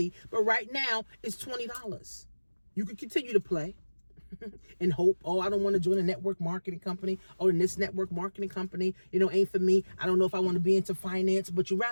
but right now it's $20. You can continue to play and hope, oh, I don't want to join a network marketing company. Oh, and this network marketing company, ain't for me. I don't know if I want to be into finance, but you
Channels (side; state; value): both; inverted; correlation -1.00